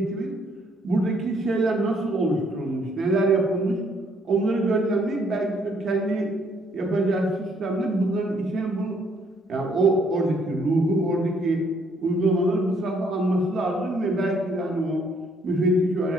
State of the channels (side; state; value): both; normal; correlation 0.67